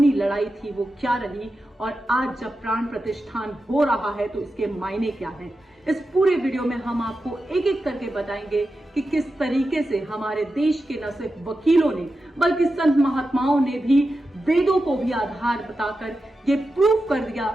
लड़ाई थी वो क्या रही और आज जब प्राण प्रतिष्ठान हो रहा है तो इसके मायने क्या हैं। इस पूरे वीडियो में हम आपको एक एक करके बताएंगे कि किस तरीके से हमारे देश के न सिर्फ वकीलों ने बल्कि संत महात्माओं ने भी वेदों को भी आधार बताकर ये प्रूफ कर दिया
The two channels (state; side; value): normal; both; correlation 0.91